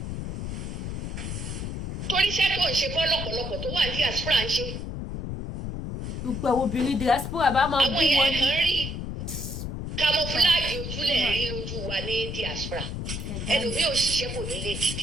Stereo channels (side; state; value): left; noise; rumble, 5 dB below the sound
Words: Torí iṣẹ́ tó ń ṣe kọ́ lọ́pọ̀lọpọ̀ tó wà ní diaspora ń ṣe. Gbogbo àwọn obìnrin diaspora bá máa bí wọn ní. Àwọn èèyàn kan rí camouflage ojúlẹ̀ rí lójú wa ní diaspora. Ẹlòmíì òṣìṣẹ́ kò ní lè